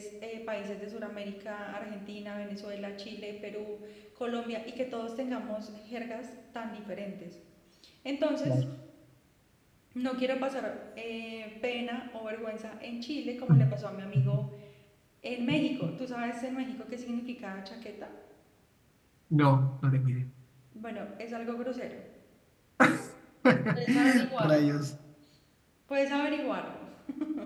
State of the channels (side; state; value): both; identical; correlation 1.00